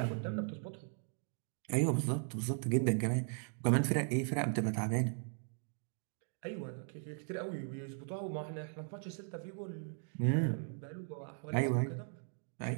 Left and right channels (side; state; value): left; silent; 52 dB below the other